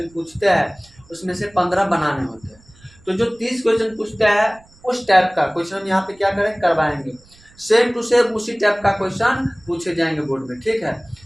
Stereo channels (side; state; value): right; noise; rumble, 28 dB below the sound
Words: पूछते हैं उसमें से 15 बनाने होते हैं। तो जो 30 क्वेश्चन पूछते हैं उस टाइप का क्वेश्चन हम यहाँ पे क्या करें, करवाएंगे। सेम टू सेम उसी टाइप का क्वेश्चन पूछे जाएंगे बोर्ड में। ठीक है,